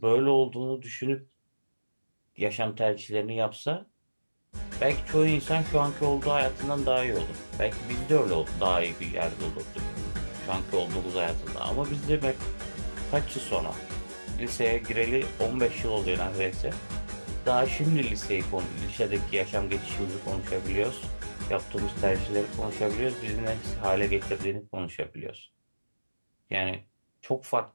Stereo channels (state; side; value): inverted; both; correlation -1.00